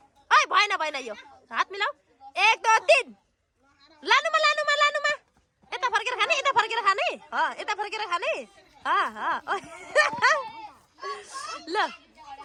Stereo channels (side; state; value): both; identical; correlation 1.00